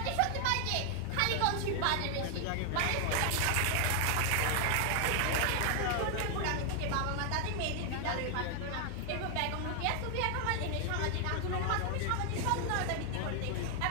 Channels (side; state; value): both; different; correlation 0.00